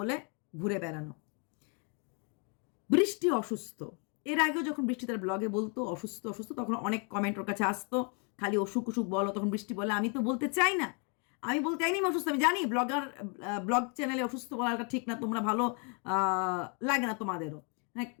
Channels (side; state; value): right; quieter; 36.7 dB